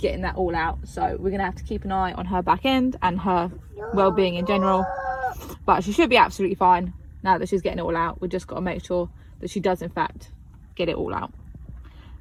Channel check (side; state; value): both; identical; correlation 1.00